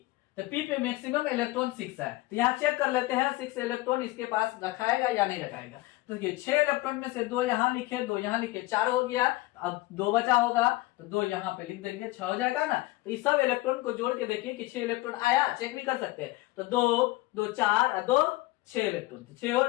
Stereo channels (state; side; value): quieter; right; 19.5 dB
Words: तो पी पे मैक्सिमम इलेक्ट्रॉन 6 है, तो यहाँ चेक कर लेते हैं 6 इलेक्ट्रॉन इसके पास रखाएगा या नहीं रखाएगा। तो देखिए 6 इलेक्ट्रॉन में से 2 यहाँ लिखे, 2 यहाँ लिखे, 4 हो गया। अब 2 बचा होगा तो 2 यहाँ पे लिख देंगे, 6 हो जाएगा ना। तो इस सब इलेक्ट्रॉन को जोड़ के देखिए कि 6 इलेक्ट्रॉन आया, चेक भी कर सकते हैं। तो 2 2 4 और 2 6 इलेक्ट्रॉन, तो 6 हो